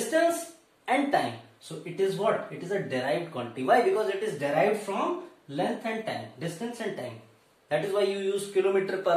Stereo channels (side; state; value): both; identical; correlation 1.00